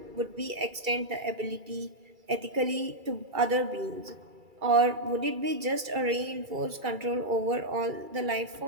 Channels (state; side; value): late; left; 2.3 ms